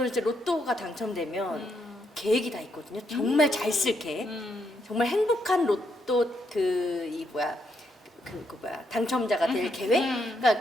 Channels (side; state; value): both; normal; correlation 0.77